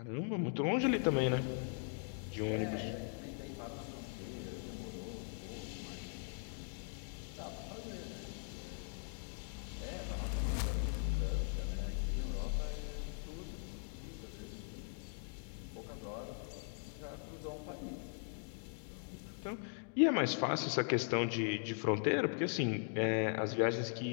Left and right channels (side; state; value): right; silent; 51 dB below the other